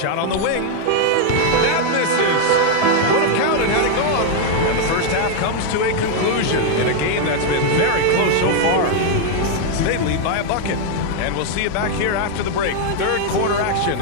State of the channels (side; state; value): both; different; correlation 0.00